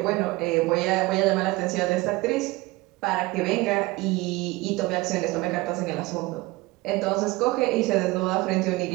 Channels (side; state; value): left; quieter; 21.5 dB